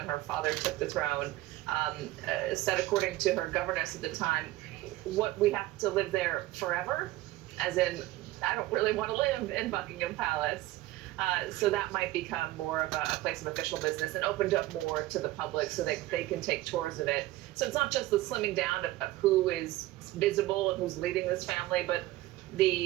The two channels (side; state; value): left; quieter; 17.2 dB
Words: her father took the throne, said, according to her governess at the time, what, we have to live there forever? As in, I don't really want to live in Buckingham Palace. So that might become more of a place of official business and opened up more to the public so they can take tours of it. So it's not just the slimming down of who is visible and who's leading this family, but